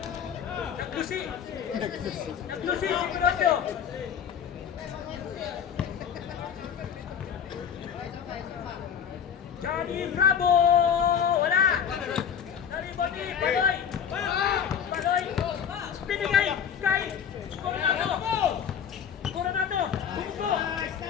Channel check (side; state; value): right; quieter; 8.0 dB